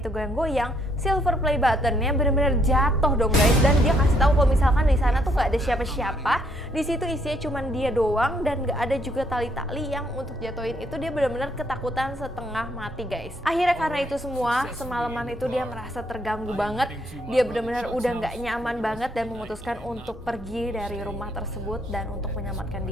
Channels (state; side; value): normal; both; correlation 0.70